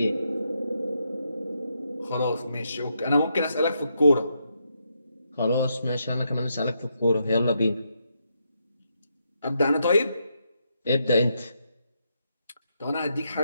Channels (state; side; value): inverted; both; correlation -0.80